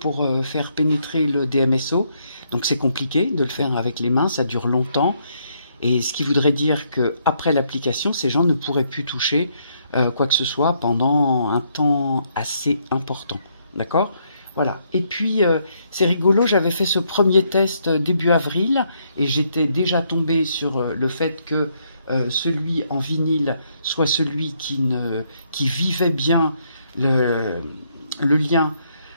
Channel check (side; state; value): both; inverted; correlation -0.73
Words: faire pénétrer le DMSO. Donc c'est compliqué de le faire avec les mains, ça dure longtemps. Et ce qui voudrait dire qu'après l'application, ces gens ne pourraient plus toucher quoi que ce soit pendant un temps assez important. D'accord? Voilà. Et puis, c'est rigolo, j'avais fait ce premier test début avril et j'étais déjà tombée sur le fait que celui en vinyle soit celui qui vivait bien le lien